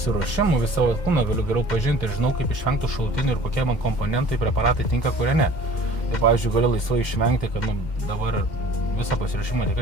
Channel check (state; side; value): late; right; 2.1 ms